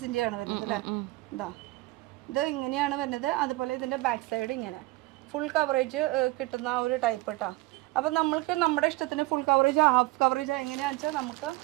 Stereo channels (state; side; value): quieter; left; 20.2 dB